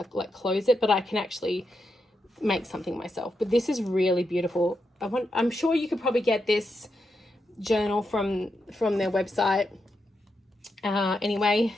it, but I can actually make something myself. But this is really beautiful. I'm sure you could probably get this journal from their website anyway.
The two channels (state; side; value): normal; both; correlation 0.85